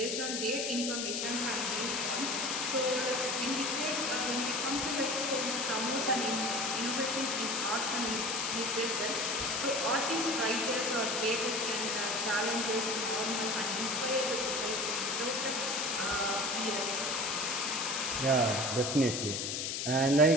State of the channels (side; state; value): left; noise; hiss, 1 dB below the sound